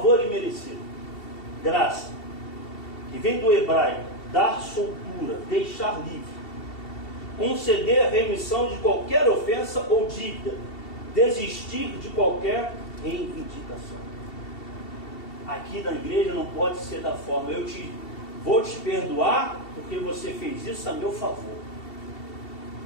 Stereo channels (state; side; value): late; right; 2.7 ms